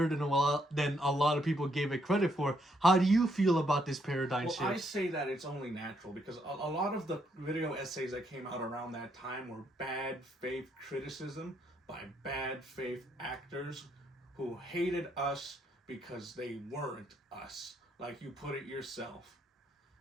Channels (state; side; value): normal; both; correlation 0.74